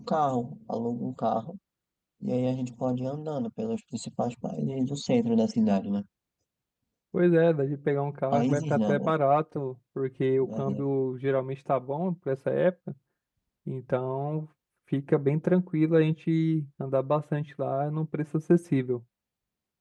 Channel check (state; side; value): identical; both; correlation 1.00